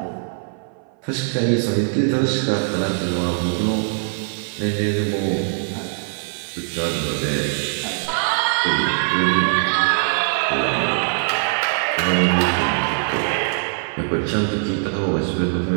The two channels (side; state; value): left; silent; 56 dB below the other